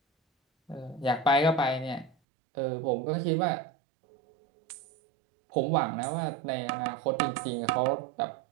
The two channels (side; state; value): left; drops out; at 2.1 s